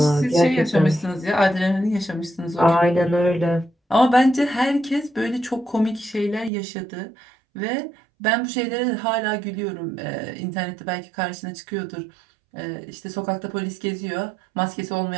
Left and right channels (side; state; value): left; drops out; at 6.5 s